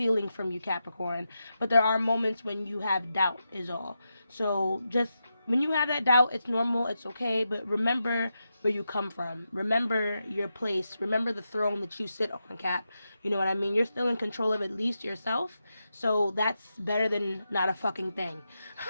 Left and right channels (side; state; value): both; inverted; correlation -0.87